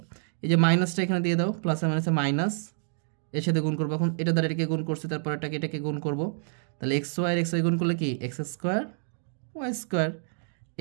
এই যে মাইনাসটা এখানে দিয়ে দাও, প্লাসে মাইনাসে মাইনাস, এর সাথে গুণ করবো। এখন এটা দ্বারা এটাকে গুণ করছি, তারপর এটাকে গুণ করবো, তাহলে এক্স ওয়াই এক্স ওয়াই গুণ করলে কি x square Y square,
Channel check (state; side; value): silent; left; digital silence